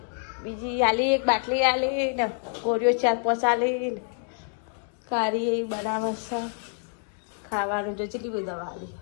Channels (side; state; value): right; silent; 56 dB below the other